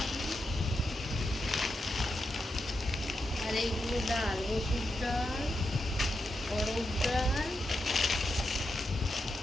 আর এইগুলো ডাল, মসুর ডাল, অরহর ডাল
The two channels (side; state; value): both; normal; correlation 0.86